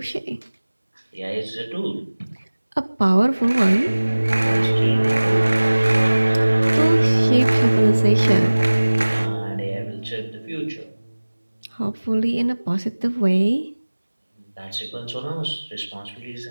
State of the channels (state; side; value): inverted; both; correlation -1.00